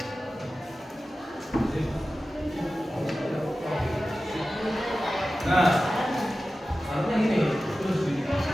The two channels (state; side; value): normal; both; correlation 0.94